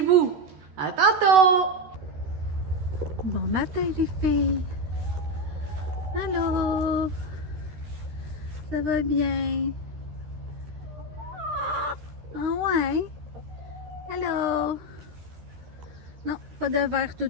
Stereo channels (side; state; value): left; late; 13 ms